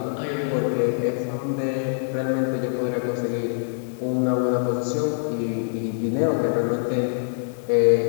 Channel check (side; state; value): right; silent; digital silence